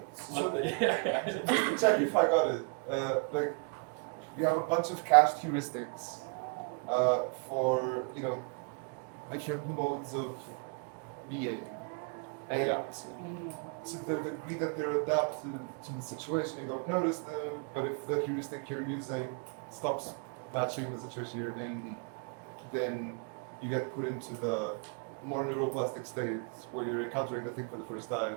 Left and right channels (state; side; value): quieter; left; 38.7 dB